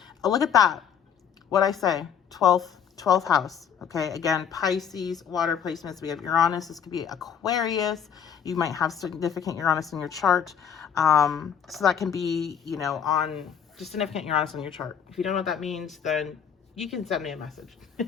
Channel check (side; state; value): right; quieter; 8.1 dB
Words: Look at that. What I say, 12th house. Okay, again, Pisces, water placements. We have Uranus. This could be Aquarius. You might have significant Uranus in your chart. So that can be, on just significant Uranus on your chart. If you don't know what that means, then you can send me a message.